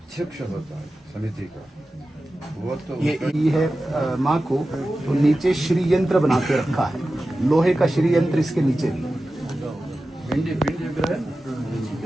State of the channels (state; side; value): normal; both; correlation 0.94